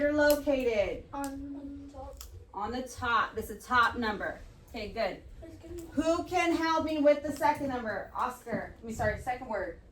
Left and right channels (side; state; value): both; identical; correlation 1.00